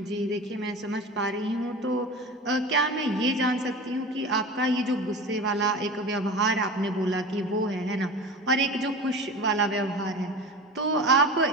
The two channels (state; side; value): normal; both; correlation 0.33